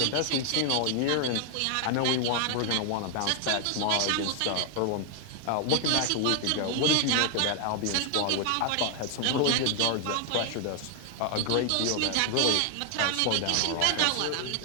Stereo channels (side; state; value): both; different; correlation 0.00